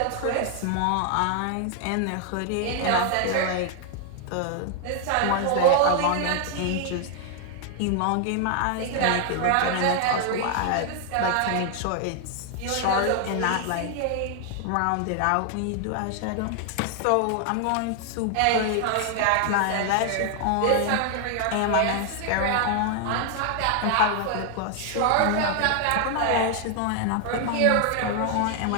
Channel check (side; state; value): both; different; correlation 0.00